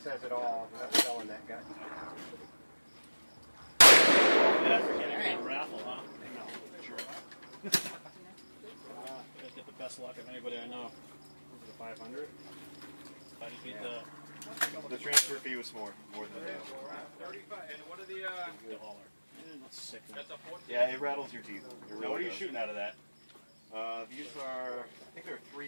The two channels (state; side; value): inverted; both; correlation -1.00